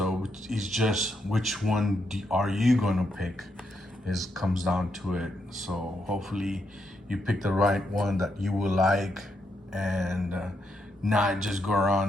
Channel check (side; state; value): both; normal; correlation 0.80